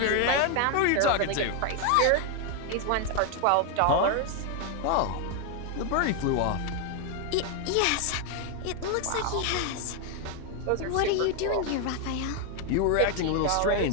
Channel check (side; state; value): both; different; correlation 0.01